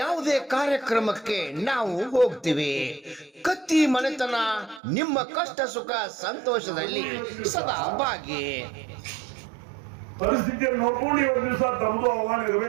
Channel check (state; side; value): drops out; left; at 4.8 s